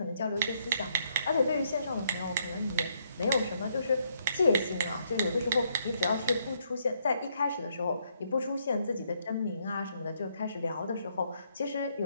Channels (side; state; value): both; inverted; correlation -0.72